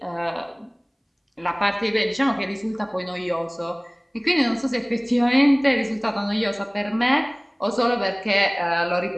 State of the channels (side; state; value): both; identical; correlation 1.00